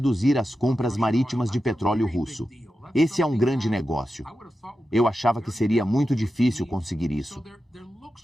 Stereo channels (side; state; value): both; normal; correlation 0.91